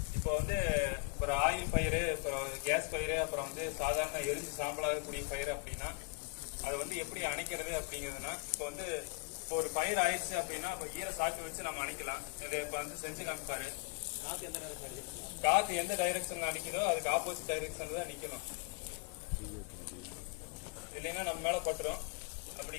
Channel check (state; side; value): quieter; right; 29.8 dB